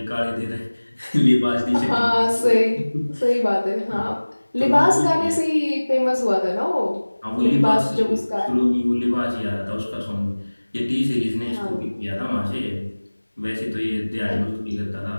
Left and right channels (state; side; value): inverted; both; correlation -1.00